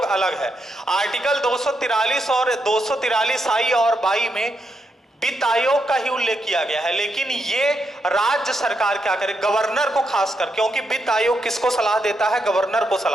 अलग है। आर्टिकल 243 और 243I और 22 में वित्त आयोग का ही उल्लेख किया गया है, लेकिन ये राज्य सरकार क्या करे, गवर्नर को खासकर, क्योंकि वित्त आयोग किसको सलाह देता है? गवर्नर को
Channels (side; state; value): both; normal; correlation 0.82